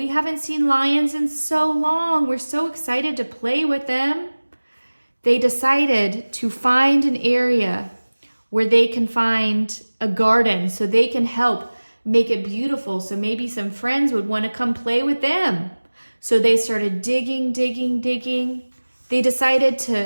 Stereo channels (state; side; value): inverted; both; correlation -1.00